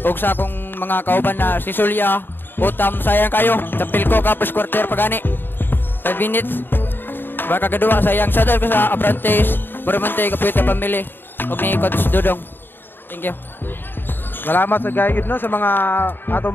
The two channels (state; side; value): late; right; 0.096 ms